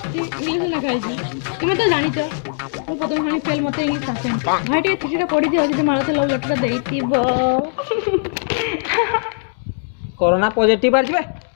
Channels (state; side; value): silent; right; digital silence